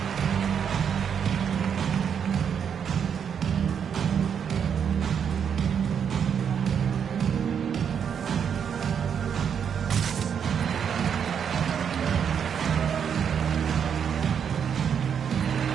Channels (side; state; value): left; quieter; 7.6 dB